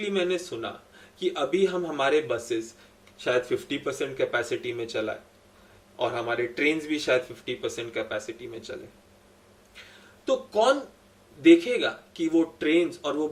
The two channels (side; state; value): both; identical; correlation 1.00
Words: मैंने सुना कि अभी हम हमारे बसेस शायद 50% कैपेसिटी में चलाए और हमारे ट्रेन्स भी शायद 50% कैपेसिटी में चले। तो कौन देखेगा कि वो ट्रेन्स और वो